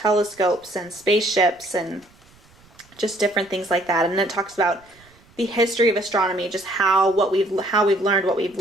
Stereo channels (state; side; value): noise; right; rumble, 29 dB below the sound